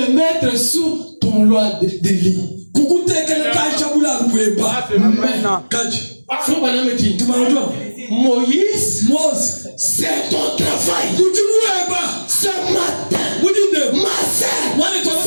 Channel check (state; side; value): inverted; both; correlation -1.00